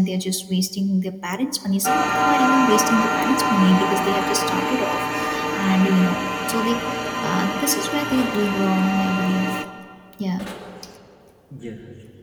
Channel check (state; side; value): identical; both; correlation 1.00